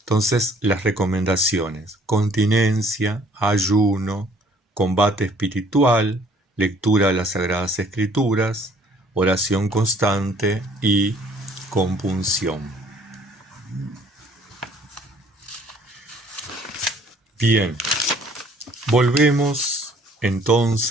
las recomendaciones: continencia, ayuno, combate espiritual, lectura de las Sagradas Escrituras, oración constante y compunción. Bien, volvemos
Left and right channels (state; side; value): normal; both; correlation 0.58